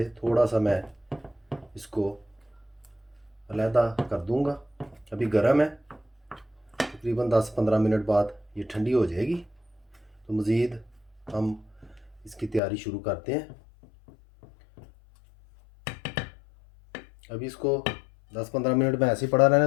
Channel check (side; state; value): right; drops out; at 12.6 s